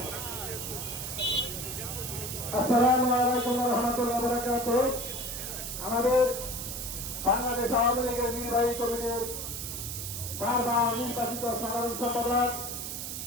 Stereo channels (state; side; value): noise; right; hiss, 6 dB below the sound